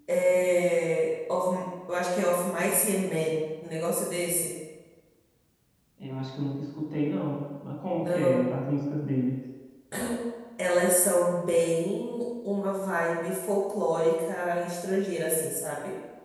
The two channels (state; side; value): identical; both; correlation 1.00